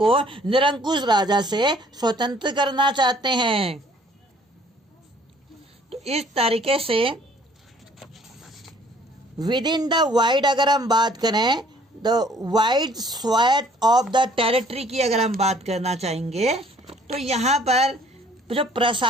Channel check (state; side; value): normal; both; correlation 0.58